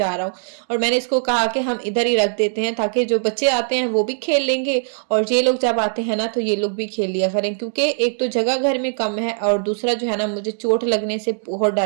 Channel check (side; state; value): left; silent; digital silence